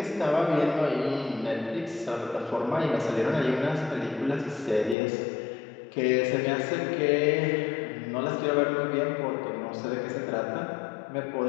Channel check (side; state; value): right; drops out; at 5.0 s